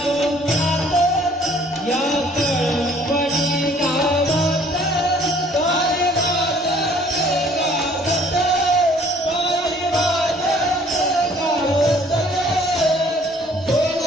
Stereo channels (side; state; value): both; normal; correlation 0.57